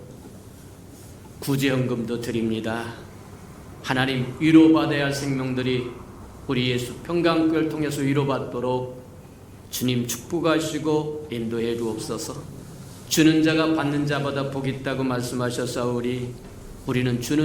구제헌금도 드립니다. 하나님, 위로받아야 할 생명들이 우리 예수 평강교회를 통해서 위로받도록 주님 축복하시고 인도해 주옵소서. 주는 자가 받는 자보다 복이 있다고 말씀하셨사오니 우리는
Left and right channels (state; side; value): identical; both; correlation 1.00